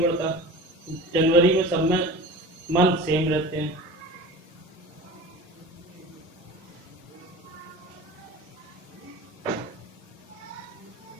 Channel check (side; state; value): both; normal; correlation 0.37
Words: पड़ता। जनवरी में सब में मंथ सेम रहते हैं।